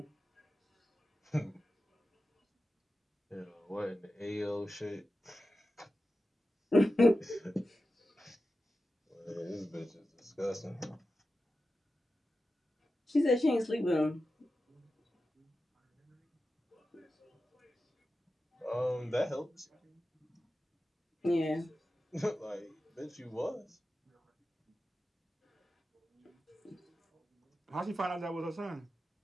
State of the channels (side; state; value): both; normal; correlation 0.92